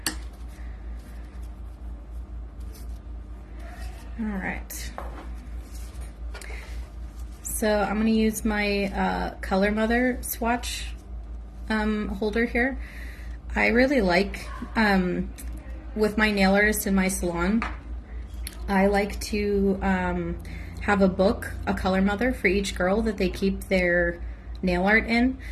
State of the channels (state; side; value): identical; both; correlation 1.00